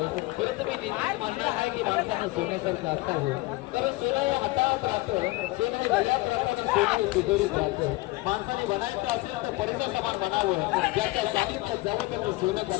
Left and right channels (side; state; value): right; quieter; 21.3 dB